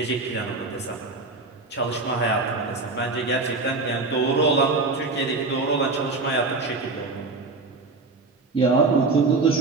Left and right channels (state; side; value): quieter; left; 3.7 dB